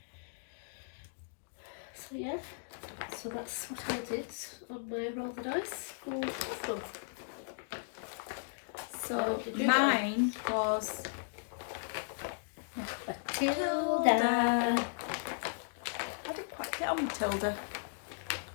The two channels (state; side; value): silent; right; digital silence